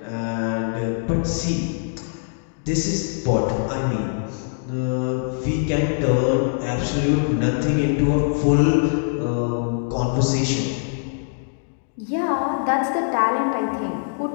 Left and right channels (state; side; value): silent; right; 64 dB below the other